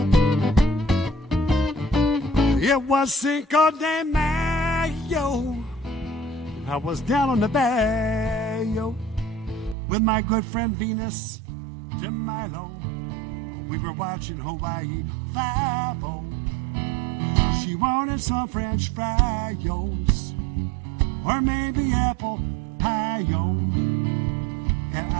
It was Cinco de Mayo. I was down on the bayou with my good friend Venus de Milo. We were watching Hawaii Five-O. She wanted some French fries or maybe apple pie-o. And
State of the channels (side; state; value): left; drops out; at 9.8 s